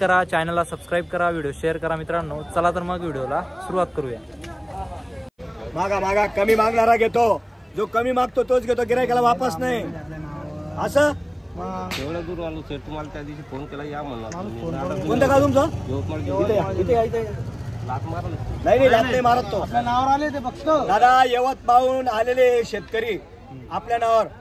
चॅनलला सबस्क्राईब करा, व्हिडिओ शेअर करा. मित्रांनो, चला तर मग व्हिडिओला सुरुवात करूया. मागा मागा कमी मागणारा घेतो, जो कमी मागतो तोच घेतो, गिरायकाला वापस नाही. असं एवढं दूर आलो सर, तुम्हाला त्या दिवशी फोन केला या म्हणला. कोणतं का तुमचं? लात मारलं नाही लात नाही मारत तो. आपल्या नावावर आले ते बघतो दादा. यवत पाहून आलेले शेतकरी आपल्या नावावर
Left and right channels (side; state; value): both; identical; correlation 1.00